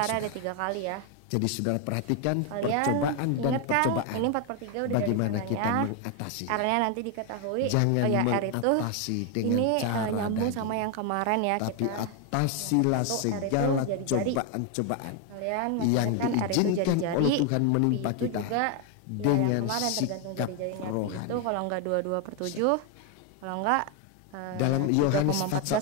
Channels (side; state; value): both; different; correlation 0.01